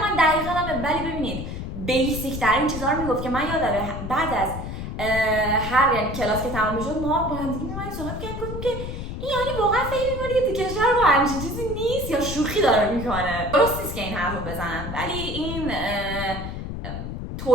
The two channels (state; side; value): noise; left; rumble, 6 dB below the sound